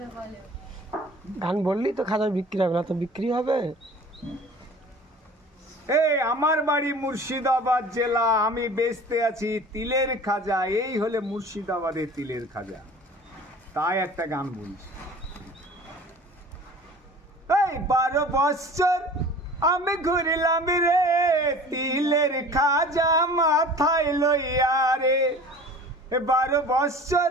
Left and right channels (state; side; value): normal; both; correlation 0.43